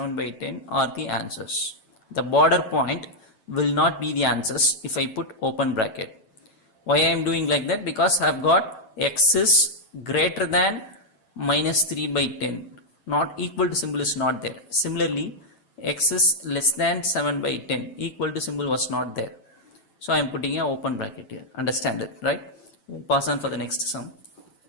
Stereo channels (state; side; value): late; right; 9.1 ms